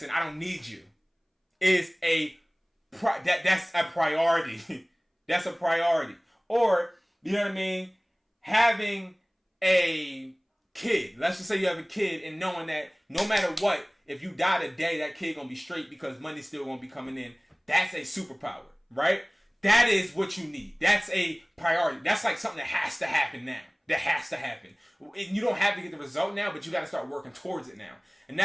I don't need you, is that's a priority. That's a priority. Or, you know what I mean? Having a kid. Let's just say you have a kid, and knowing that no matter what, if you die today, that kid gonna be straight because money's still gonna be coming in. That's a superpower, right? That is what you need. That's a priority. That's like something that has to happen now. That has to happen. You don't have to get the result now, but you got to start working towards it now. And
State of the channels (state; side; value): identical; both; correlation 1.00